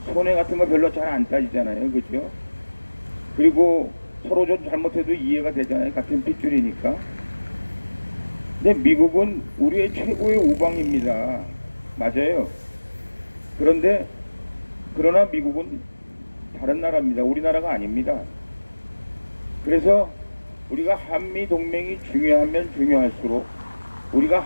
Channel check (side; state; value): both; inverted; correlation -1.00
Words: 손해 같은 거 별로 잘 안 따지잖아요. 그죠? 그리고 서로 좀 잘못해도 이해가 되잖아요. 같은 핏줄이니까. 근데 미국은 우리의 최고의 우방입니다. 맞아요. 그러나 미국은 다른 나라입니다. 우리나라가 아닙니다. 그래서 우리가 한미동맹이 중요하면 중요할수록